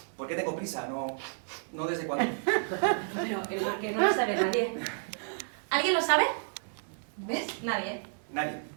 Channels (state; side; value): silent; left; digital silence